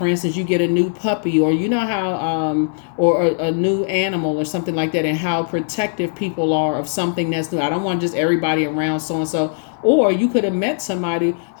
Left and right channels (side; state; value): right; silent; digital silence